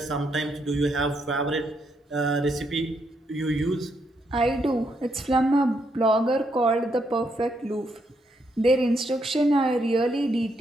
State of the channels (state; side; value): normal; both; correlation 0.77